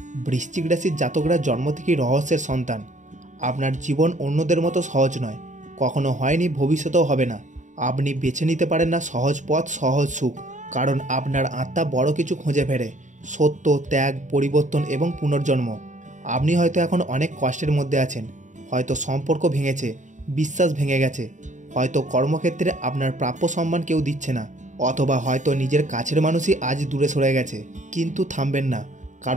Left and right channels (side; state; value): left; late; 0.36 ms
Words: বৃশ্চিক রাশির জাতকরা জন্ম থেকেই রহস্যের সন্তান। আপনার জীবন অন্যদের মতো সহজ নয়, কখনো হয়নি, ভবিষ্যতেও হবে না। আপনি বেছে নিতে পারেন না সহজ পথ, সহজ সুখ, কারণ আপনার আত্মা বড় কিছু খুঁজে ফেরে, সত্য, ত্যাগ, পরিবর্তন এবং পুনর্জন্ম। আপনি হয়তো এখন অনেক কষ্টের মধ্যে আছেন, হয়তো সম্পর্ক ভেঙেছে, বিশ্বাস ভেঙে গেছে, হয়তো কর্মক্ষেত্রে আপনার প্রাপ্য সম্মান কেউ দিচ্ছে না, অথবা হয়তো নিজের কাছের মানুষই আজ দূরে সরে গেছে। কিন্তু থামবেন না,